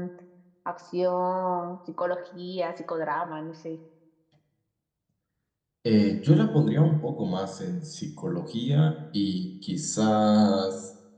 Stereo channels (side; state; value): both; identical; correlation 1.00